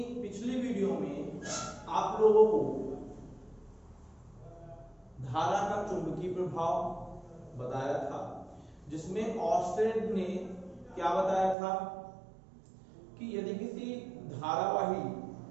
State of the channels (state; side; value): drops out; left; at 11.6 s